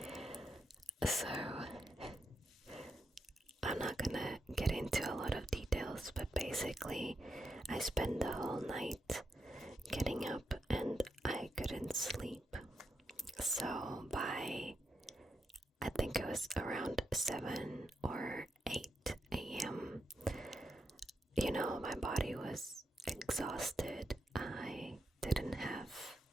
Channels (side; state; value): both; normal; correlation 0.84